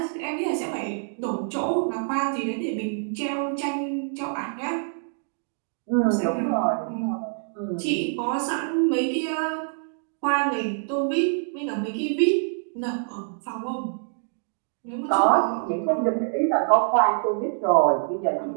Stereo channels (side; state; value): left; silent; digital silence